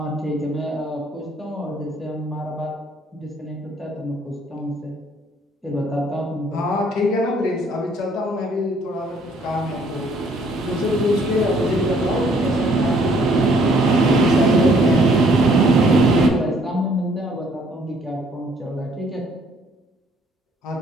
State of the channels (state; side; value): normal; both; correlation 0.63